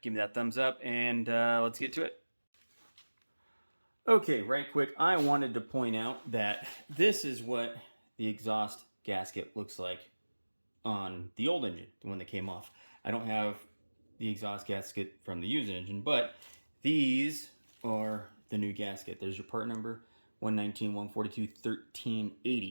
give me that thumbs up, and let's get to it. Okay, right quick, I wanted to point out that this is what the exhaust gasket looks like on the old engine, the one that came off. I don't have the exhaust gasket from the used engine, but these are the new gasket. There's your part number, 119, 142,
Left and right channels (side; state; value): both; inverted; correlation -1.00